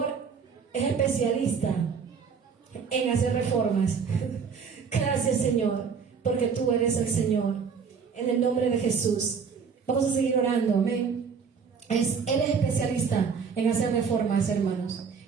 es especialista en hacer reformas. Gracias, Señor, porque tú eres el Señor. En el nombre de Jesús. Vamos a seguir orando, amén. Él es especialista en hacer reformas, hermanos.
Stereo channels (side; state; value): left; quieter; 6.0 dB